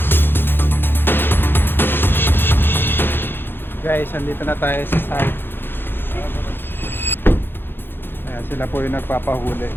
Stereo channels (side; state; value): right; late; 0.10 ms